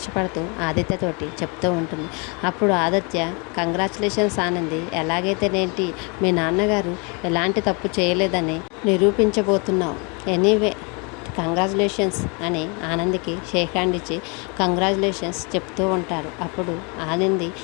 ఆదిత్యతోటి చెప్తూ ఉంటుంది. అప్పుడు ఆదిత్య, కంగ్రాచులేషన్స్ ఆనంది, ఎలాగైతేనేంటి మీ నాన్నగారు ఎలాంటి తప్పు చేయలేదని నిరూపించబోతున్నావు. ఎనీవే కంగ్రాచులేషన్స్ అని ఆనందికి షేక్ హ్యాండ్ ఇచ్చి కంగ్రాచులేషన్స్ చెప్తూ ఉంటారు. అప్పుడు ఆనంది,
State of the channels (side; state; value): right; quieter; 32.3 dB